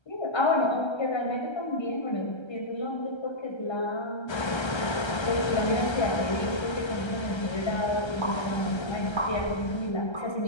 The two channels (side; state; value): right; late; 1.3 ms